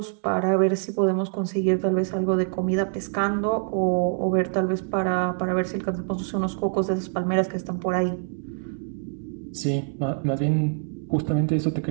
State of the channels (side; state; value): left; silent; 62 dB below the other